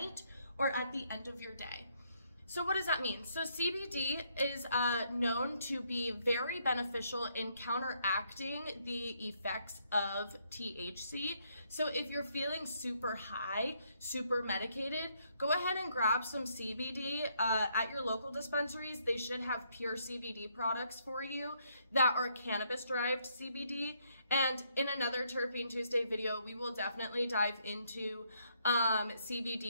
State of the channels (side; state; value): both; inverted; correlation -0.72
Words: or at the end of your day. So what does that mean? So CBD is known to be very beneficial in counteracting the effects of THC. So if you're feeling super high, super medicated, go ahead and grab some CBD at your local dispensaries. They should have pure CBD products for you that are cannabis-derived CBD. And in another Terpene Tuesday video, we will definitely dive into